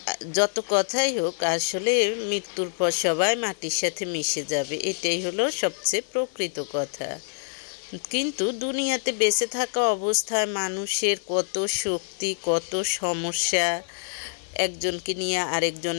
যত কথাই হোক, আসলে মৃত্যুর পর সবাই মাটির সাথে মিশে যাবে, এটাই হলো সবচেয়ে প্রকৃত কথা। কিন্তু দুনিয়াতে বেঁচে থাকা অবস্থায় মানুষের কত শক্তি, কত সমস্যা, একজনকে নিয়ে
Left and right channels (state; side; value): silent; right; digital silence